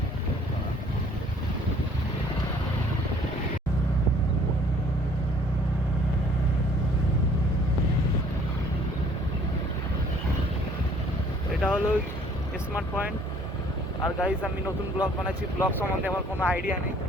এটা হলো স্মার্ট পয়েন্ট। আর গাইজ আমি নতুন ব্লগ বানাচ্ছি, ব্লগ সম্বন্ধে আমার কোনো আইডিয়া নেই,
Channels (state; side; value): normal; both; correlation 0.58